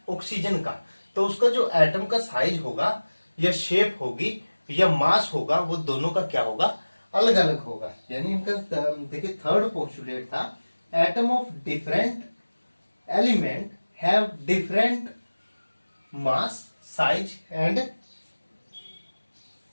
ऑक्सीजन का, तो उसका जो एटम का साइज होगा या शेप होगी या मास होगा, वो दोनों का क्या होगा, अलग अलग होगा। यानी इनका देखिए थर्ड पोस्टुलेट था, atom of different element have different mass, size and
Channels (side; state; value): both; inverted; correlation -1.00